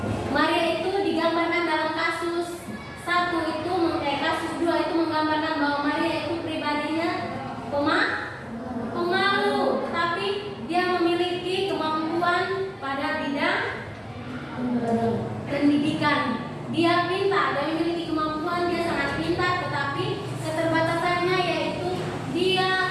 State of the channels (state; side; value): identical; both; correlation 1.00